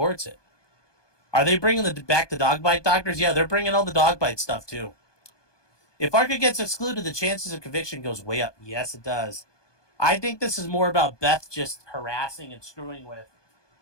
it. Are they bringing back the dog bite doctors? Yeah, they're bringing all the dog bite stuff, too. If ARCA gets excluded, the chances of conviction goes way up. Yes, it does. I think this is more about Beth just harassing and screwing with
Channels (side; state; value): right; late; 1.2 ms